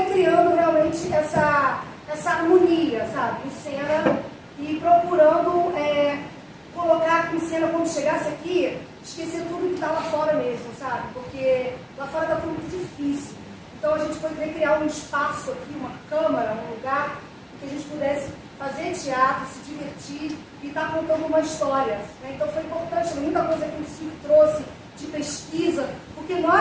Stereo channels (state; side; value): identical; both; correlation 1.00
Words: criando realmente essa harmonia, sabe, em cena, e procurando colocar em cena, quando chegasse aqui, esquecer tudo que está lá fora mesmo, sabe? Porque lá fora está tudo muito difícil. Então a gente poderia criar um espaço aqui, uma câmara, um lugar, que a gente pudesse fazer teatro, se divertir e estar contando uma história, né? Então foi importante, muita coisa que o Silvio trouxe de pesquisa, porque